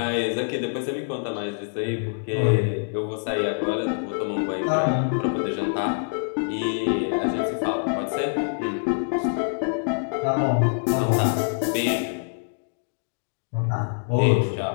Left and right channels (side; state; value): right; silent; digital silence